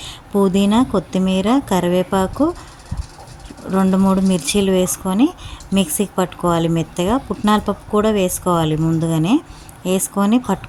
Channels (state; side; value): identical; both; correlation 1.00